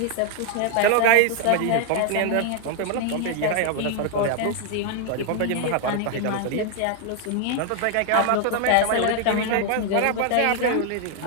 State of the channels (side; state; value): both; different; correlation 0.00